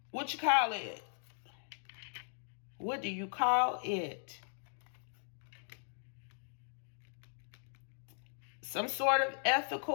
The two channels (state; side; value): silent; right; digital silence